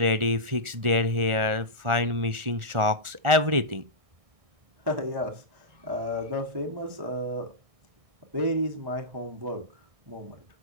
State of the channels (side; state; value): left; late; 1.4 ms